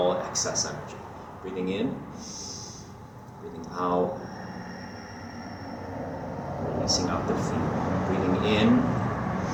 excess energy. Breathing in, breathing out, releasing out the feet. Breathing in,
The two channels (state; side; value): identical; both; correlation 1.00